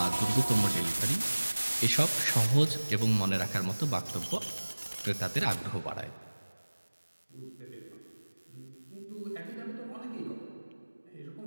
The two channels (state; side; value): inverted; both; correlation -1.00